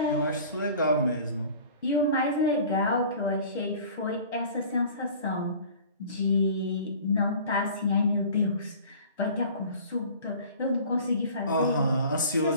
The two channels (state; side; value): inverted; both; correlation -0.45